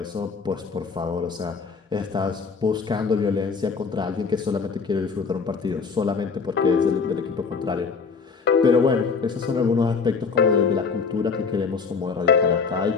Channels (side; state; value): right; quieter; 5.2 dB